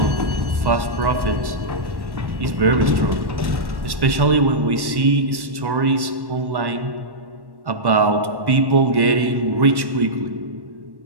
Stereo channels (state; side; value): late; left; 1.1 ms